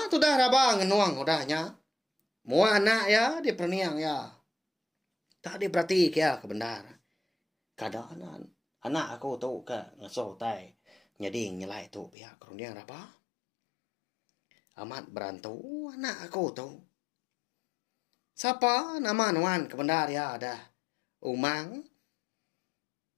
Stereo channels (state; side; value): drops out; right; at 12.1 s